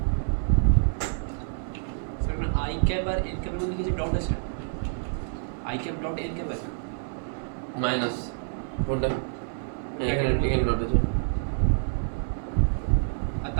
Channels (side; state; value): left; silent; 57 dB below the other